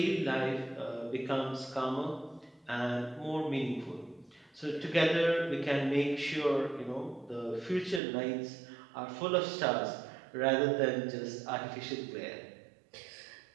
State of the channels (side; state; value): left; drops out; at 8.0 s